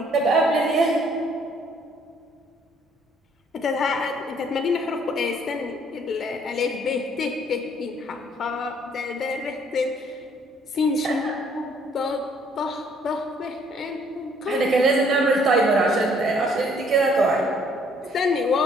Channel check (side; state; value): both; normal; correlation 0.62